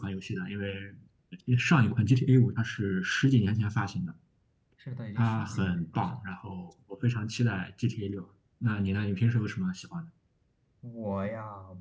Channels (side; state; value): both; identical; correlation 1.00